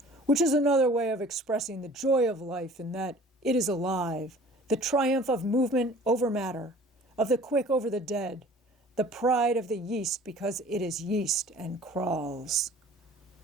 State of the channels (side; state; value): both; normal; correlation 0.48